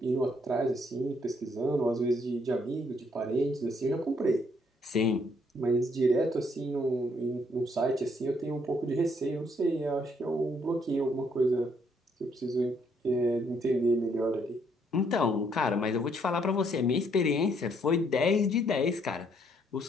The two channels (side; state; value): both; normal; correlation 0.69